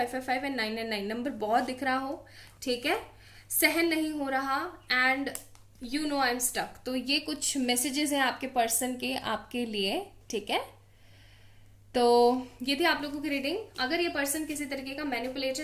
एंड 999 नंबर बहुत दिख रहा हो, ठीक है, सहन नहीं हो रहा, and you know I am stuck. तो ये कुछ मैसेजेस हैं आपके पर्सन के आपके लिए, ठीक है। तो ये थी आप लोगों की रीडिंग। अगर ये पर्सन किसी तरीके का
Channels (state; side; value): identical; both; correlation 1.00